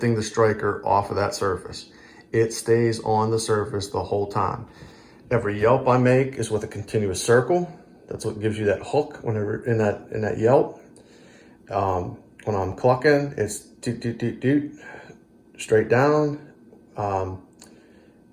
the striker off of that surface. It stays on the surface the whole time. Every yelp I make is with a continuous circle. That's what gives you that hook whenever in that yelp. When I'm clucking, it's doot, doot, doot, doot, straight down. Or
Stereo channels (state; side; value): identical; both; correlation 1.00